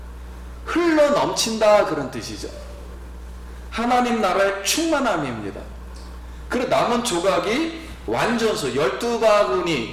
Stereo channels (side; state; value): both; identical; correlation 1.00